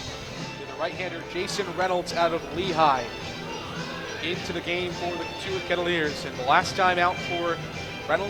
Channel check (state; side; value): identical; both; correlation 1.00